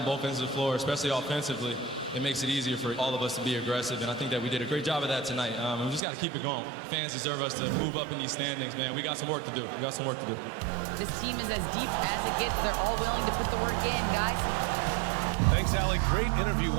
both ends of the floor, especially offensively, it makes it easier for all of us to be aggressive, and I think that we did a great job of that tonight. We just got to keep it going. Fans deserve us to move up in these standings, man. We got some work to do. We got some work to do. This team is as deep as it gets. They're all willing to put the work in, guys. Thanks, Allie. Great interview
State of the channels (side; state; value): left; drops out; at 6.0 s